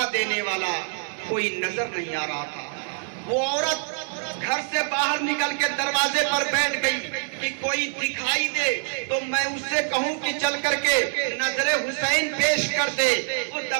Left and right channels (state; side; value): silent; left; 62 dB below the other